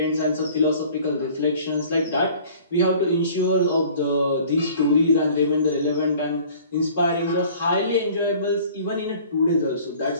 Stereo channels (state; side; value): inverted; both; correlation -0.50